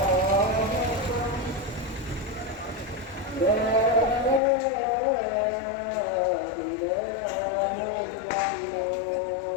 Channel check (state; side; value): drops out; right; at 4.4 s